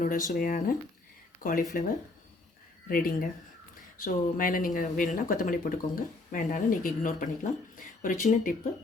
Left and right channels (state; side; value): quieter; right; 3.2 dB